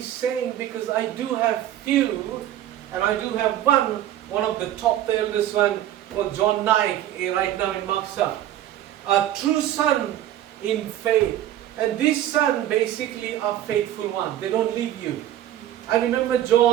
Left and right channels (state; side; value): quieter; left; 12.5 dB